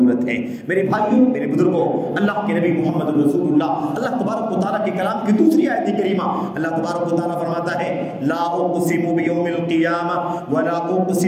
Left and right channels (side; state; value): both; identical; correlation 1.00